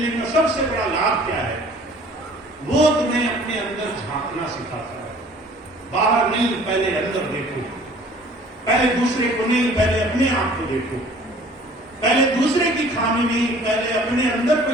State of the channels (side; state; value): both; normal; correlation 0.51